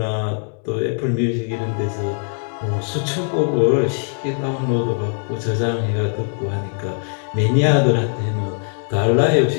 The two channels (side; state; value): right; silent; 65 dB below the other